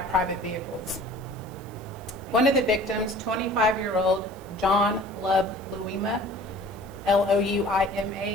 private vehicles. One of the victims, 25-year-old John Love Louima,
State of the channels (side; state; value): right; noise; hiss, 25 dB below the sound